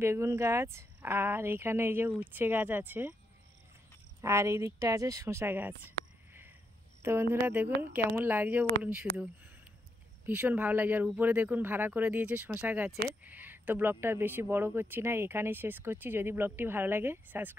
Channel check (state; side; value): normal; both; correlation 0.81